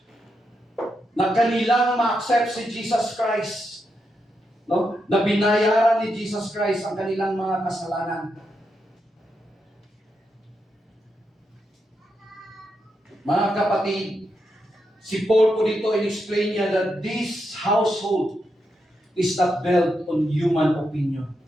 na kanilang ma-accept si Jesus Christ. No? Na binayaran ni Jesus Christ ang kanilang mga kasalanan. Mga kapatid, si Paul po dito in-explain niya that this household is not built on human opinion.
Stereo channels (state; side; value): normal; both; correlation 0.84